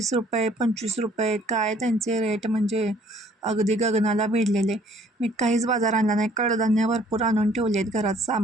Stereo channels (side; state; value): both; normal; correlation 0.59